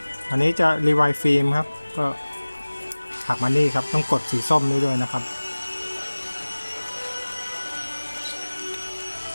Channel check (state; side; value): inverted; both; correlation -1.00